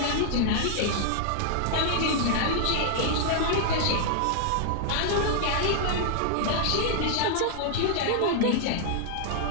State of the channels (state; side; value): different; both; correlation -0.01